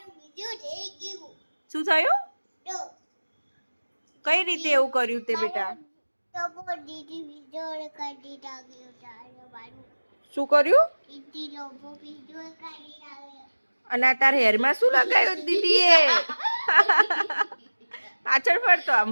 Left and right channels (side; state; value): both; inverted; correlation -1.00